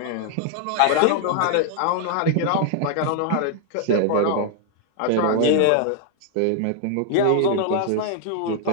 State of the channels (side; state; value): both; different; correlation 0.00